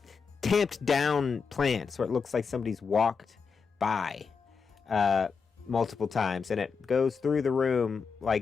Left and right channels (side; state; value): right; quieter; 5.5 dB